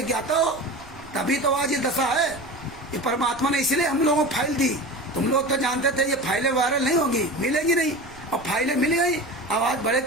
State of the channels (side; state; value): right; noise; rumble, 23 dB below the sound